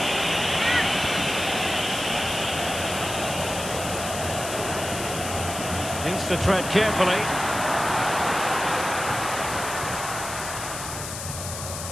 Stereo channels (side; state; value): left; noise; hiss, 7 dB below the sound